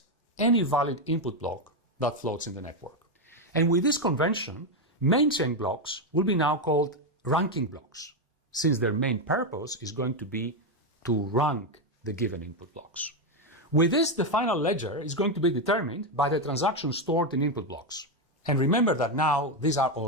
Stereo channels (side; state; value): both; normal; correlation 0.06